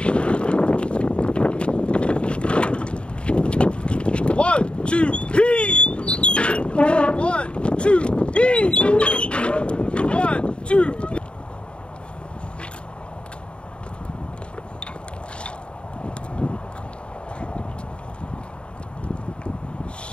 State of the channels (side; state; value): right; late; 0.055 ms